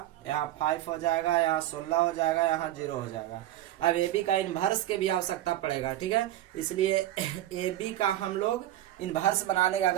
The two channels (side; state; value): left; quieter; 13.8 dB